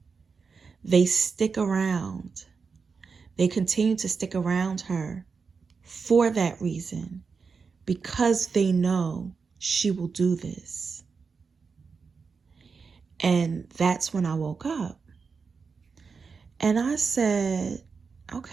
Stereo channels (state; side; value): quieter; left; 5.2 dB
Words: they stick around. They continue to stick around her for that reason, because they know she will do this. And that's when I woke up. And I said,